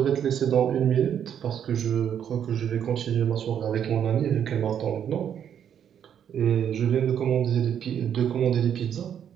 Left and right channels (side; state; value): left; quieter; 8.9 dB